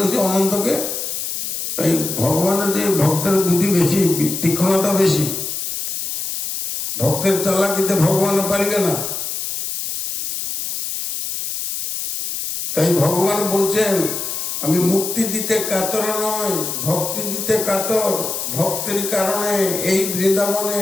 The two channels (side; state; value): left; noise; hiss, 4 dB below the sound